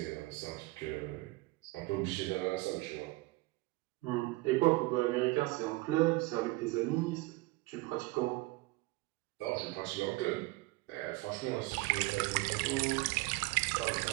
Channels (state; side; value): quieter; left; 21.7 dB